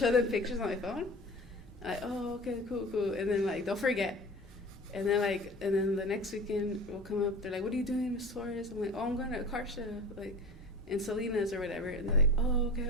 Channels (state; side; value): normal; both; correlation 0.37